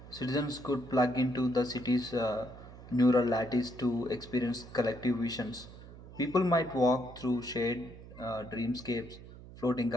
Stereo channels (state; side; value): noise; right; hum, 16 dB below the sound